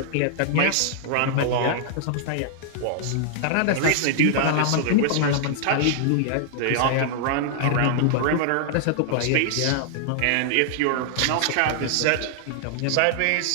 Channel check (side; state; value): both; different; correlation -0.01